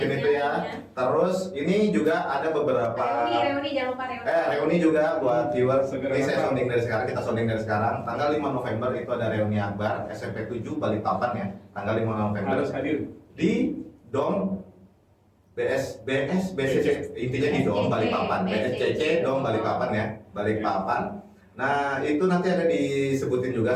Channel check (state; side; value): identical; both; correlation 1.00